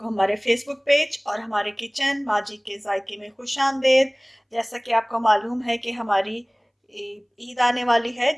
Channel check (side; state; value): both; identical; correlation 1.00